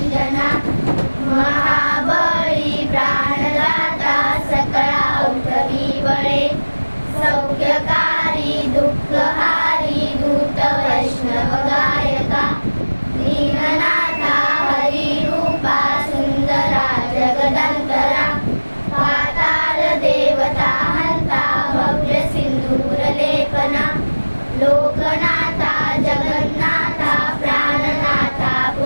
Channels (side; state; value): both; inverted; correlation -1.00